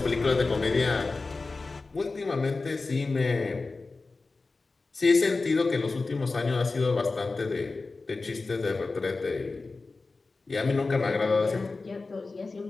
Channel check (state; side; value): quieter; right; 3.8 dB